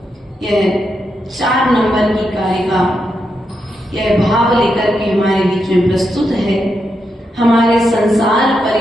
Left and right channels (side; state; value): both; normal; correlation 0.84